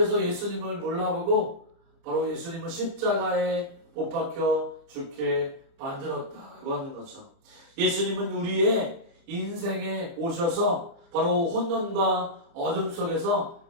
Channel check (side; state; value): left; late; 29 ms